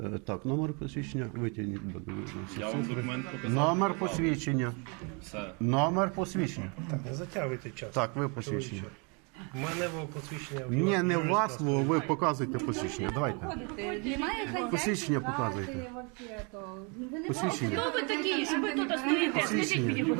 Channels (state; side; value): quieter; left; 33.5 dB